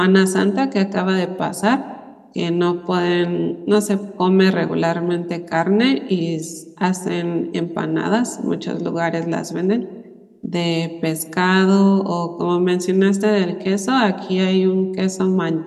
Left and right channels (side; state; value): both; identical; correlation 1.00